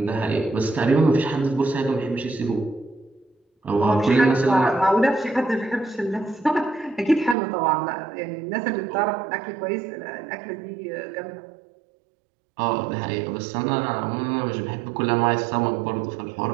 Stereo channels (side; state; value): left; drops out; at 7.4 s